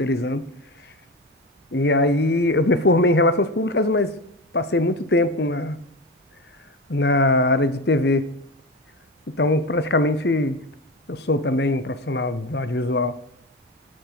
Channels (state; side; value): normal; both; correlation 0.23